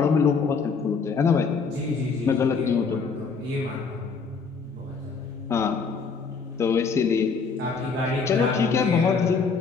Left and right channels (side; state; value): right; quieter; 5.1 dB